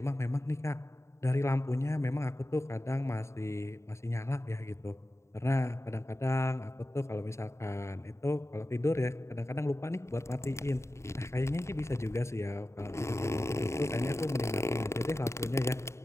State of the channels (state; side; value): late; right; 0.14 ms